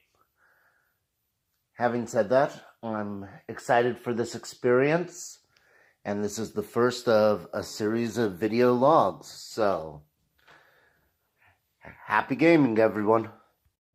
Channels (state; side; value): identical; both; correlation 1.00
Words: Having said that, I'm excited for this experience. And this is the first of a series of video logs. So, happy gaming, everyone.